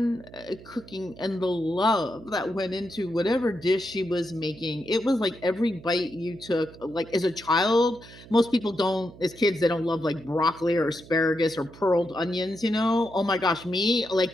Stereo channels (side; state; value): right; noise; hum, 19 dB below the sound